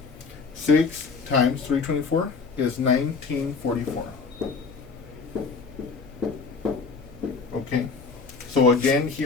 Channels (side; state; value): right; quieter; 4.8 dB